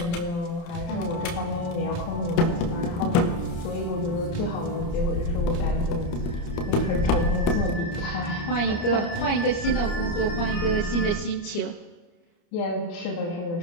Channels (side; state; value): right; late; 29 ms